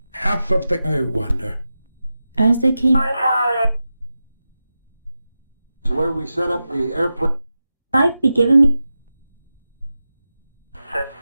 half of the. I wonder. as they came. Is where we set up the airplane. life be given me.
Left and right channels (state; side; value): inverted; both; correlation -0.92